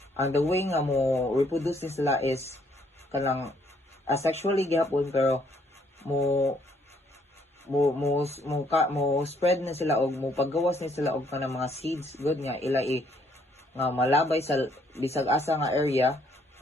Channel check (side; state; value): both; normal; correlation 0.67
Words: ang the way nga mo reproduce ni sila is kanang asexually gihapon, pero mo spread na sila og mo paggawas ni sila og kanang mga seeds good nga ila nga malabay sa bisag asa nga area